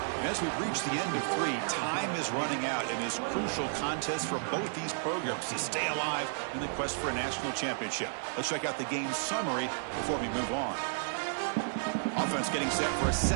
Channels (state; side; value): silent; left; 56 dB below the other